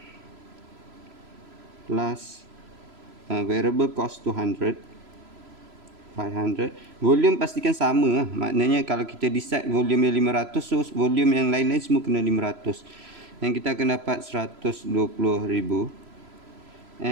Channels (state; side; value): late; left; 3.0 ms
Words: plus variable cost 200. 500. Volume pastikan sama lah. Maknanya kalau kita decide volume yang 500, so volume yang lain-lain semua kena 500. Dan kita akan dapat 120,000.